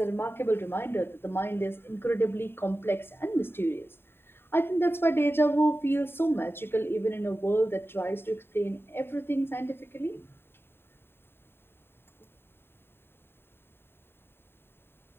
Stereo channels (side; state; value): right; late; 0.11 ms